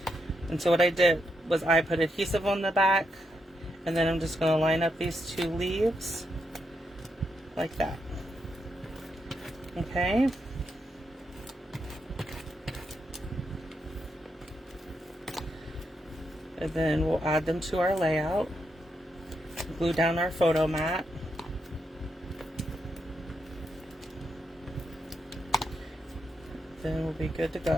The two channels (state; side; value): normal; both; correlation 0.82